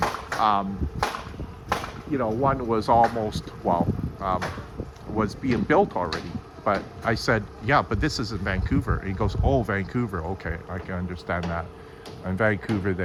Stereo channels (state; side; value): identical; both; correlation 1.00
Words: one was almost was being built already. But I said, but this is in Vancouver. And he goes, oh, Vancouver, okay, I can understand that. In Vancouver,